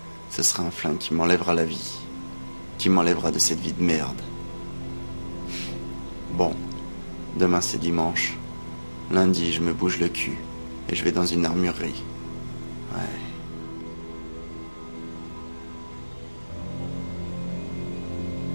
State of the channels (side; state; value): both; inverted; correlation -1.00